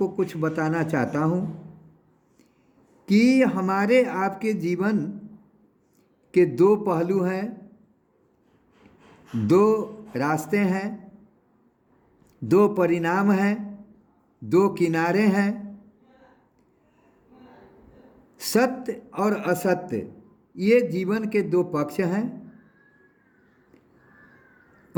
कुछ बताना चाहता हूँ कि हमारे आपके जीवन के 2 पहलू हैं, 2 रास्ते हैं, 2 परिणाम हैं, 2 किनारे हैं। सत्य और असत्य, ये जीवन के 2 पक्ष हैं।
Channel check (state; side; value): identical; both; correlation 1.00